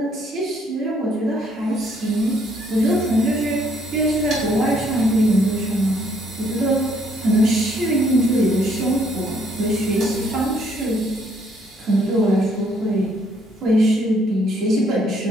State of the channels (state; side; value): normal; both; correlation 0.67